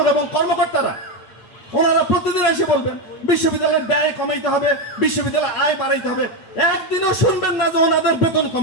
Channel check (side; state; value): right; late; 8.8 ms